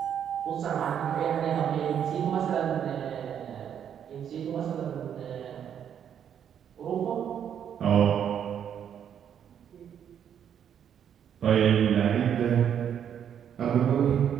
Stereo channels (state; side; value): quieter; left; 8.8 dB